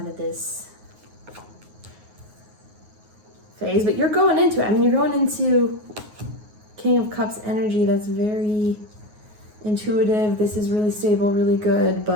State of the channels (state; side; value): late; left; 9.5 ms